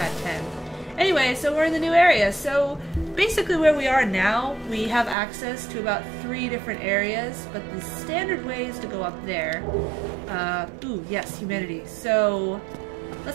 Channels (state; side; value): drops out; left; at 5.2 s